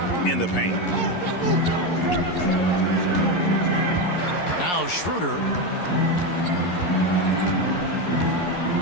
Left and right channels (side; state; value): right; late; 11 ms